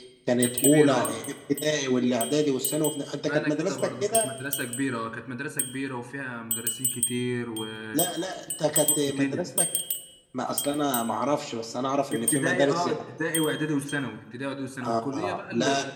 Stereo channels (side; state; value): both; identical; correlation 1.00